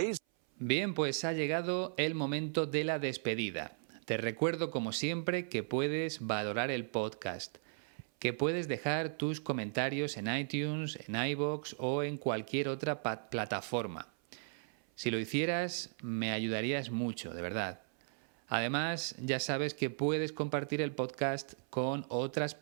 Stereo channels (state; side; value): silent; left; 54 dB below the other